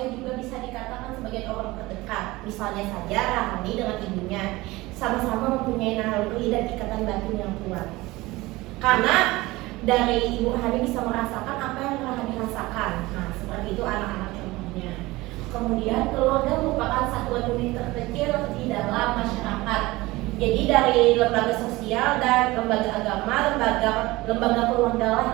juga bisa dikatakan sebagai orang terdekat. Misalnya saja Rahani dengan ibunya sama-sama mempunyai naluri dan ikatan batin yang kuat. Karena dari ibu Rahani bisa merasakan apa yang Rahani rasakan. Nah, seperti itu anak-anak contohnya. Kemudian keluarga merupakan satuan unit terkecil di dalam masyarakat. Jadi dari lembaga sosial dan lembaga agama, lembaga keluarga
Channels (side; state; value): left; quieter; 20.3 dB